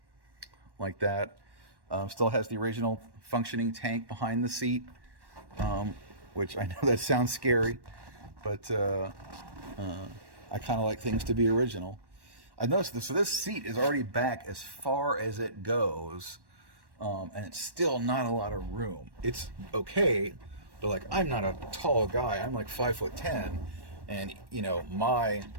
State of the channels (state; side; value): late; left; 1.1 ms